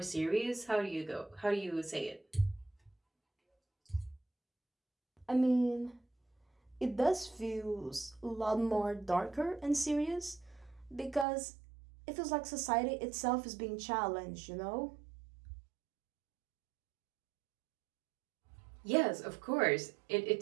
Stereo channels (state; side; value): drops out; left; at 11.2 s